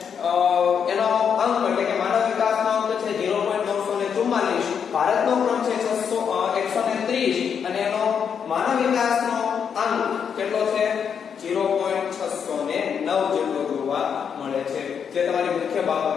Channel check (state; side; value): quieter; right; 7.2 dB